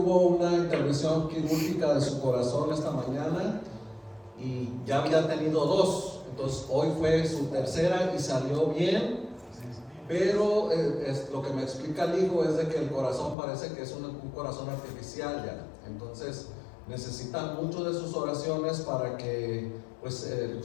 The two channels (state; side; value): drops out; right; at 13.4 s